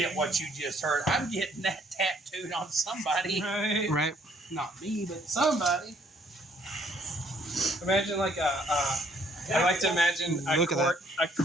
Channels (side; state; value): both; normal; correlation 0.64